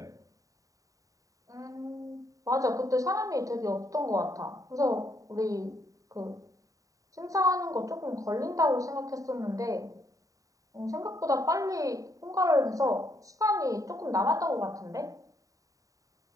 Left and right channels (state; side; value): late; left; 0.16 ms